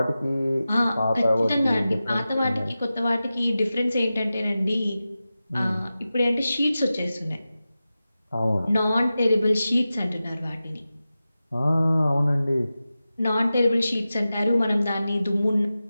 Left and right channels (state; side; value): inverted; both; correlation -0.94